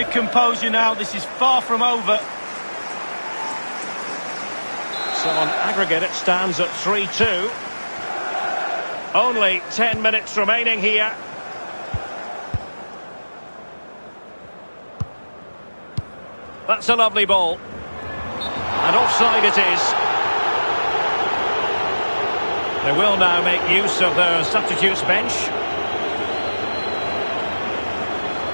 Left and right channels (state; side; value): inverted; both; correlation -1.00